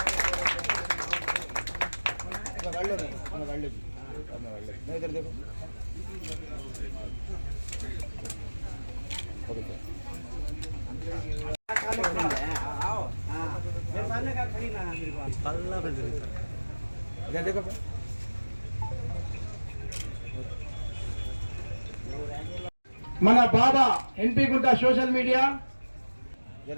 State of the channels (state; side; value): inverted; both; correlation -1.00